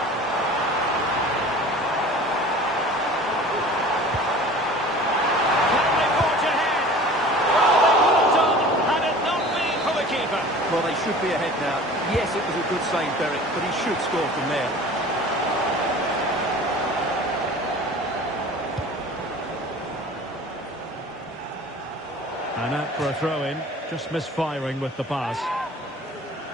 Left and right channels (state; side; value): normal; both; correlation 0.42